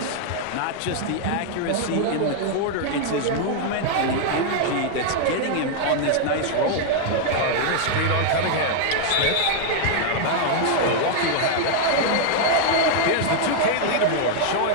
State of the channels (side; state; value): both; different; correlation 0.00